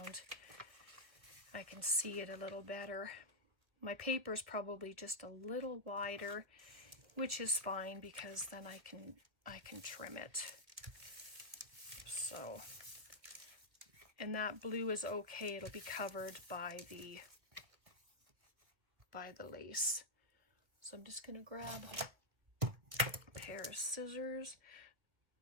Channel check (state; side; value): late; left; 1.5 ms